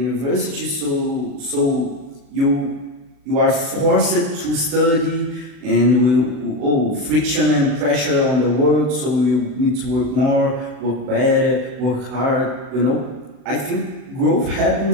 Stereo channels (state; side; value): late; left; 40 ms